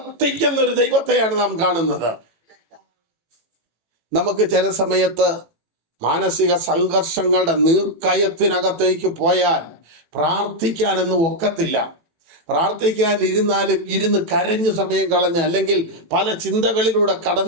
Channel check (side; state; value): left; late; 18 ms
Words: ഒരു ദൈവത്തെയാണ് നാം കാണുന്നത്. നമുക്ക് ചില സമയത്ത് മാനസിക സംഘർഷങ്ങളുടെ നീർക്കയത്തിനകത്തേക്ക് പോയാൽ പ്രാർത്ഥിക്കാനൊന്നും ഒക്കത്തില്ല. പ്രാർത്ഥിക്കാൻ ഇരുന്നാലും ഇരുന്ന് കരഞ്ഞ് സമയം കളഞ്ഞ്, അല്ലെങ്കിൽ പല ചിന്തകളിലൂടെ